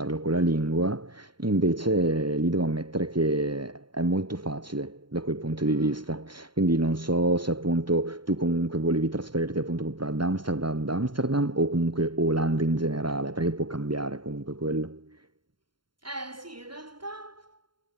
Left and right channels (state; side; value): late; left; 0.72 ms